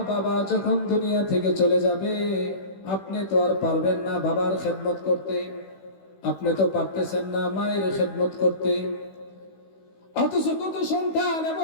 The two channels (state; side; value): late; right; 16 ms